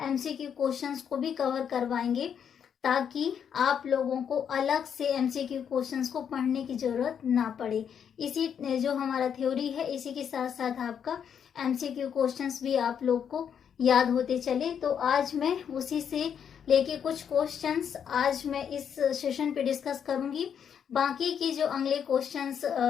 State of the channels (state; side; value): quieter; right; 8.0 dB